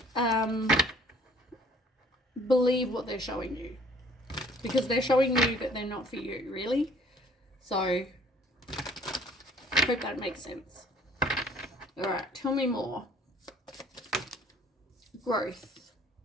Believe what they're showing you, because they're showing you that they're not for you, really. So, I hope that makes sense. All right, tell me more. Growth.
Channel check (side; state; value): both; normal; correlation 0.56